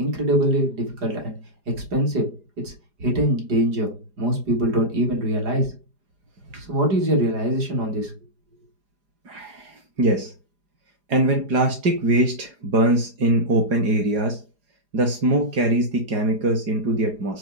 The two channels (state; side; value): late; left; 4.9 ms